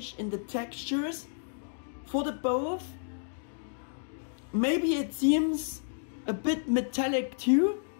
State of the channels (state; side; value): silent; right; digital silence